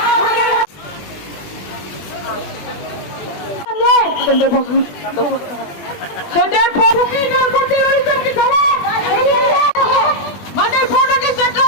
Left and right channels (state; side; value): late; right; 20 ms